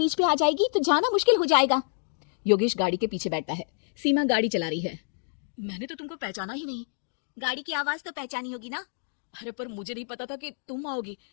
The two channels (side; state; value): right; silent; digital silence